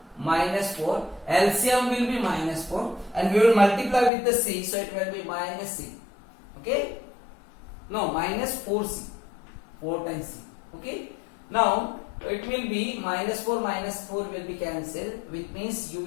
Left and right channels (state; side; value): drops out; right; at 4.1 s